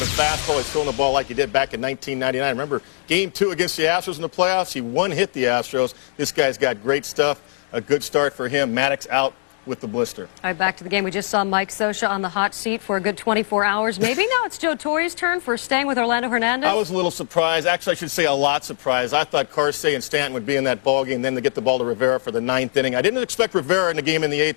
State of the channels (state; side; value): silent; right; digital silence